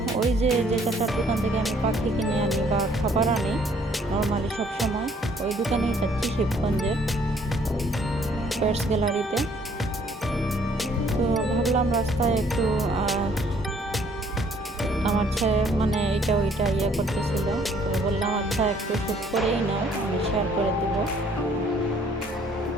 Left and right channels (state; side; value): normal; both; correlation 0.62